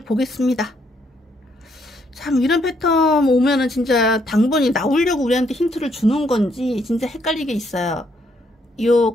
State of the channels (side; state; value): both; normal; correlation 0.72